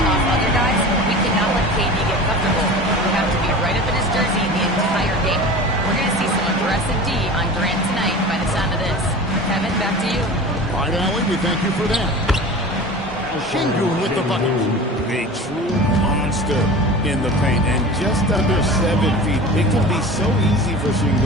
off other guys, we cannot let KD get comfortable. We have to be right up in his jersey the entire game. We're going to see some aggressive D on Durant tonight by the sound of this. Kevin, back to you. All right, Allen, we thank you for that. Şengün with the bucket. A true monster in the paint, and just under 7 feet. It can be so easy for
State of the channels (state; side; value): normal; both; correlation 0.35